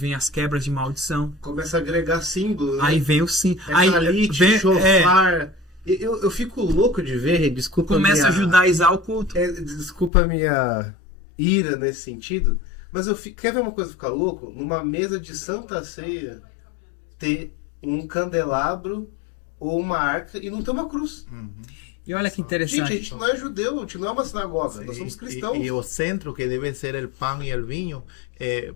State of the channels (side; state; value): right; drops out; at 10.1 s